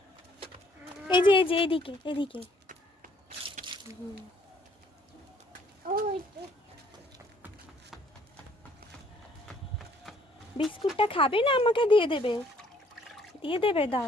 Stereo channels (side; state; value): both; normal; correlation 0.62